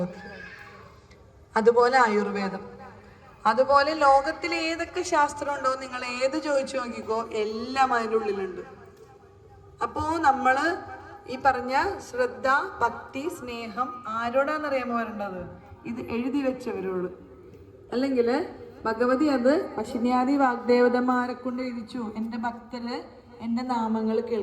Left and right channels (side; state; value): both; identical; correlation 1.00